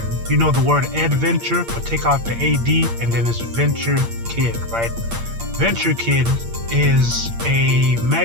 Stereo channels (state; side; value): late; left; 8.7 ms